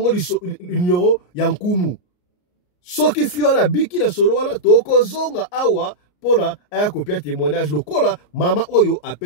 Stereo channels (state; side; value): late; right; 34 ms